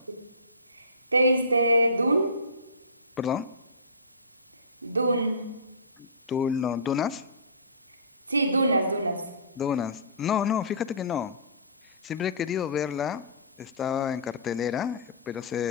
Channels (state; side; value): inverted; both; correlation -0.32